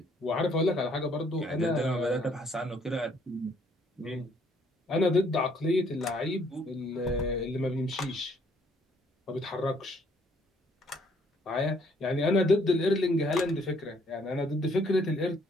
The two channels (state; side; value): normal; both; correlation 0.65